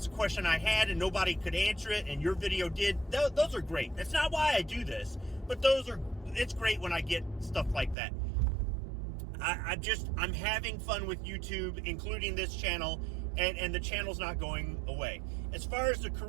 the question I had, and nobody could answer it, and your video did. Those are great. That's not why I do this, but it's great when I get stuff like that. I'm having fun with YouTube, including this channel, and the channel's not going away. As far as the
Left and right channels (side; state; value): left; drops out; at 8.0 s